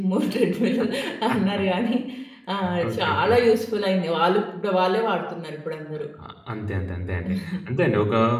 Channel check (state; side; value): identical; both; correlation 1.00